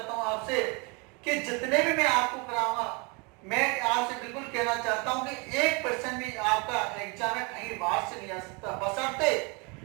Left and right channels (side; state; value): left; quieter; 30.6 dB